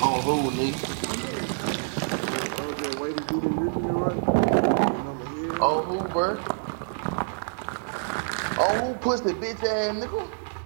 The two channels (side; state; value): left; silent; 60 dB below the other